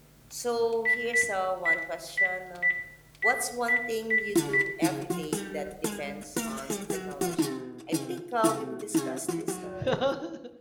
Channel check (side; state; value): both; identical; correlation 1.00